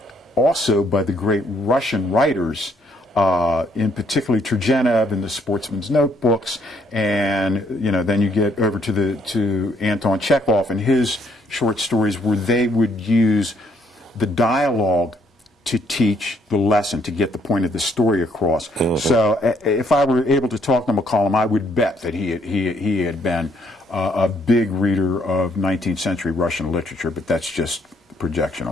also by the great Russian writers, in particularly Turgenev in the Sportsman's Notebooks, and then you get over to Anton Chekhov and his short stories, where they would use the dialogue to teach the lesson, to get the point of the story across. So if I were able to talk to McCollum, I would bet that he had been a big reader of 19th century Russian literature, but that's just projection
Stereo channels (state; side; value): normal; both; correlation 0.69